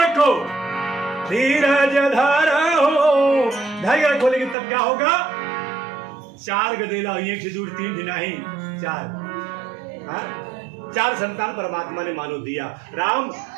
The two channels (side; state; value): left; drops out; at 4.5 s